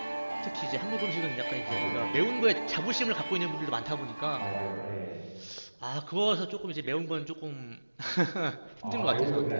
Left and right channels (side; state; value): both; inverted; correlation -1.00